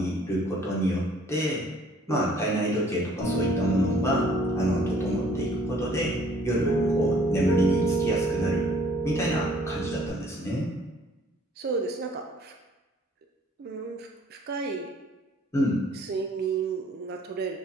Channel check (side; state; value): both; normal; correlation 0.58